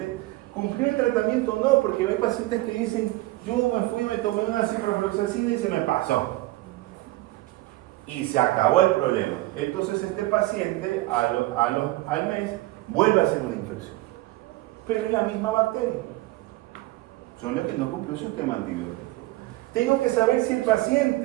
cumplió el tratamiento o no, porque hay pacientes que dicen, yo me fui, me tomé una ciprofloxacina y se me pasó. Y se acabó el problema. Entonces este paciente al mes vuelve a hacer una infección. Pero es la misma bacteria. Solo que no cumplió su esquema antibiótico. Tengo que saber si el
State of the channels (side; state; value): left; quieter; 18.7 dB